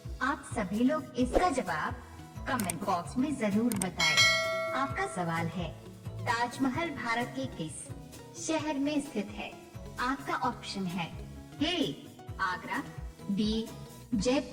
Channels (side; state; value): both; identical; correlation 1.00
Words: आप सभी लोग इसका जवाब कमेंट बॉक्स में जरूर बताएं। आपका सवाल है ताजमहल भारत के किस शहर में स्थित है? आपका ऑप्शन है ए आगरा, बी